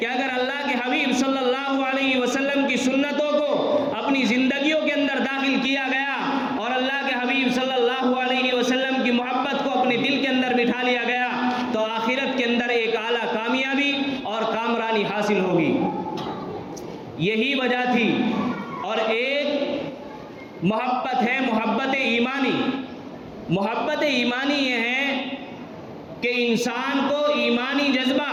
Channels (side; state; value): both; identical; correlation 1.00